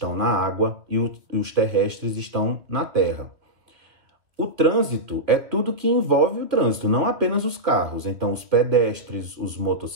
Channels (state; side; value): late; left; 2.2 ms